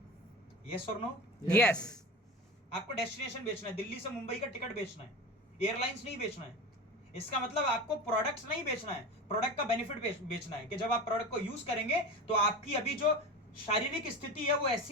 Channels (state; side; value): normal; both; correlation 0.29